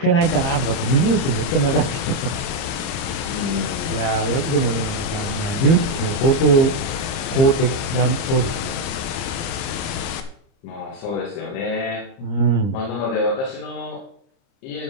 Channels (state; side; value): late; right; 30 ms